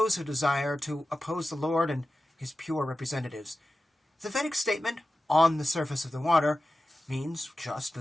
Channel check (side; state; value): both; normal; correlation 0.94